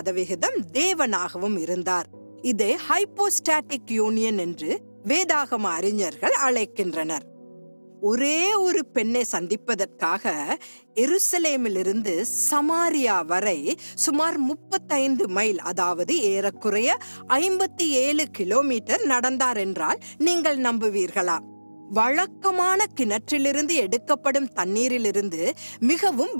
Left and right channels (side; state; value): both; inverted; correlation -1.00